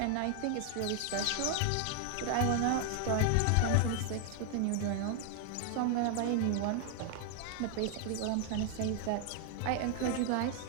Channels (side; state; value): both; different; correlation 0.00